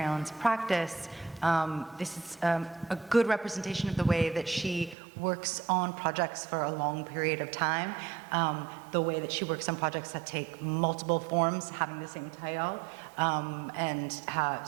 Ellen's practice, this is a good representation of the way that she works on projects for a long period of time, the way that she works on projects that take multiple forms, having the same title, and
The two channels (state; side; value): drops out; left; at 5.0 s